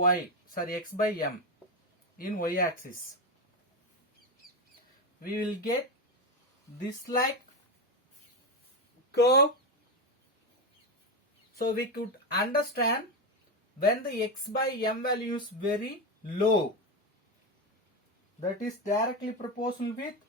in y-axis. We will get this like curve. So we could understand when the x by m value is very low, that is directly proportional with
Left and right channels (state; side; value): normal; both; correlation 0.13